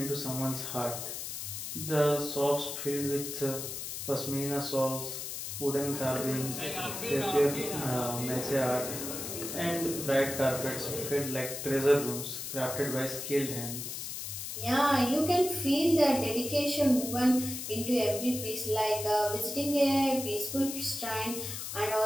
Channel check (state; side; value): noise; left; hiss, 6 dB below the sound